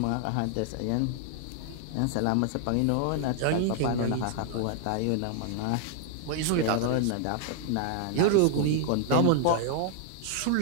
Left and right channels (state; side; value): different; both; correlation 0.00